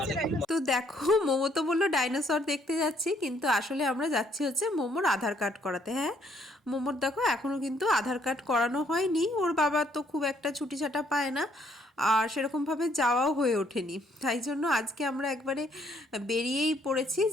তো দেখো, মোমো তো বললো ডাইনোসর দেখতে যাচ্ছি, কিন্তু আসলে আমরা যাচ্ছি হচ্ছে মোমোর আধার কার্ড করাতে। হ্যাঁ, মোমোর দেখো এখনও কিন্তু আধার কার্ড করানো হয়নি। ওর বাবা তো খুব একটা ছুটি ছাটা পায় না, আর সেরকমভাবে যাওয়াও হয়ে ওঠেনি। তাই জন্য আজকে আমরা একবারে বেরিয়েই পড়েছি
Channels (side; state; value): both; normal; correlation 0.67